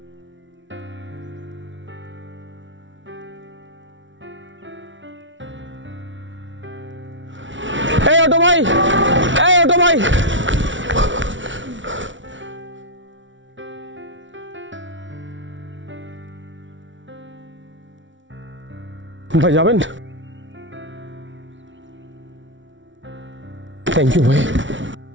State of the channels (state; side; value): late; left; 0.55 ms